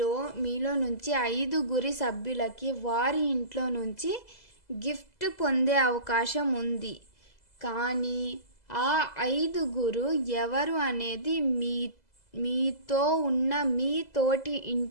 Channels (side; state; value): right; late; 2.0 ms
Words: మీలో నుంచి 5 సభ్యులకి వారి ఇంట్లో నుంచి గిఫ్ట్ పొందే అవకాశం ఉంది. కానీ ఆ 5 ఎవరు అనేది మీతో ఉన్న మీ తోటి